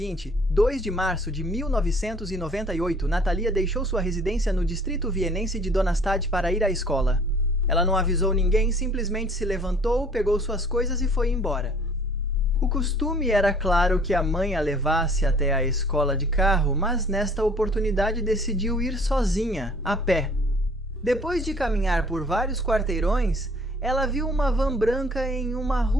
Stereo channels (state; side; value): normal; both; correlation 0.54